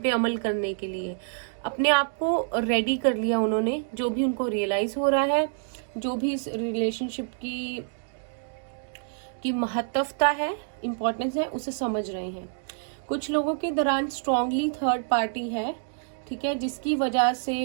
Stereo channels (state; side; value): silent; left; digital silence